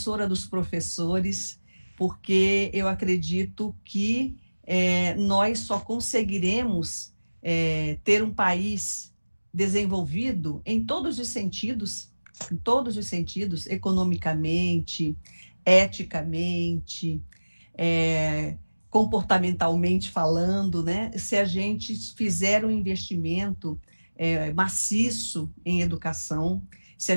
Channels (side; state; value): both; inverted; correlation -1.00